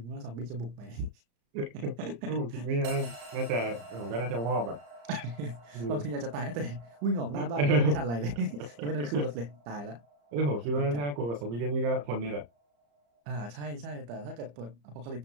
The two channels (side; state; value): left; late; 34 ms